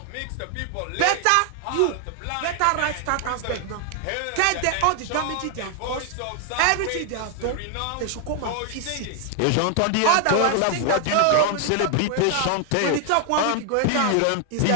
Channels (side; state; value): both; different; correlation 0.00